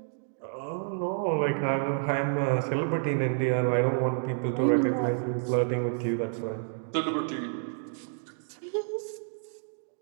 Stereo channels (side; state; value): left; silent; digital silence